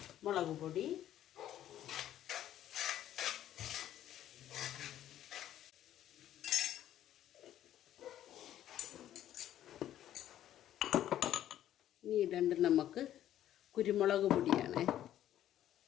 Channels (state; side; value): quieter; right; 12.0 dB